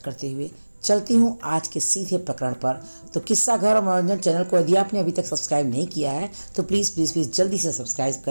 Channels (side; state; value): both; inverted; correlation -1.00